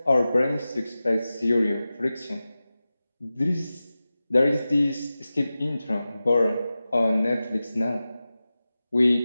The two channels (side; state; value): both; inverted; correlation -0.95